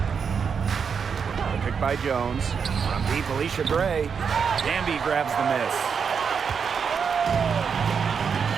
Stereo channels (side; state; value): left; quieter; 6.4 dB